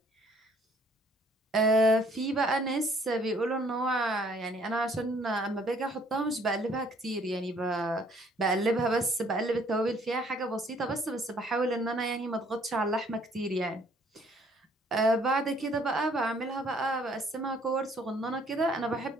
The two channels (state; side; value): normal; both; correlation 0.62